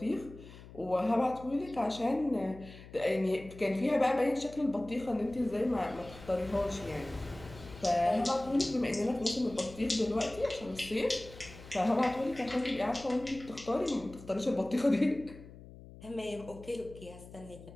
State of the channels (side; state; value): left; noise; hum, 17 dB below the sound